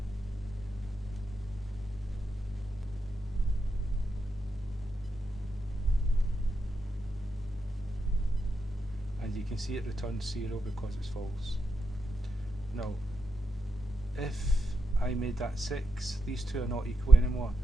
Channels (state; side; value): noise; left; rumble, 15 dB below the sound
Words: and you can see it returns 0 because it's false. Now if I made that 6, these two are not equal anymore,